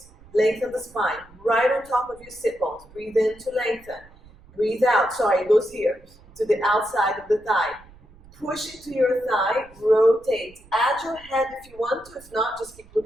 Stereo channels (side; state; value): right; noise; rumble, 24 dB below the sound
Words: Lengthen the spine. Right on top of your sit bones. Breathe in to lengthen. Breathe out. Sorry, it goes here to the outside of the thigh. Push it to your thigh. Rotate. Add your head if you want to. If not, just keep